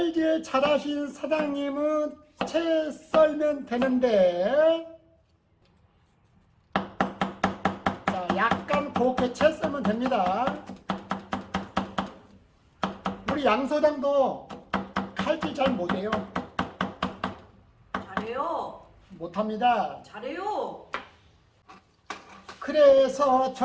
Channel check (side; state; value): both; identical; correlation 1.00